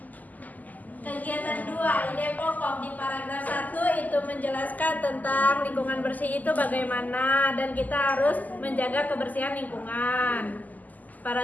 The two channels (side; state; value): right; late; 0.081 ms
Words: Kegiatan 2, ide pokok di paragraf 1 itu menjelaskan tentang lingkungan bersih itu bagaimana dan kita harus menjaga kebersihan lingkungan.